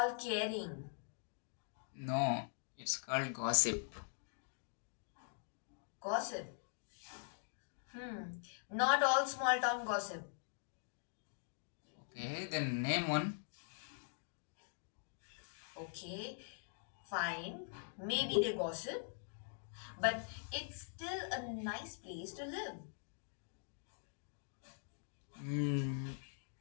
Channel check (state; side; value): silent; right; digital silence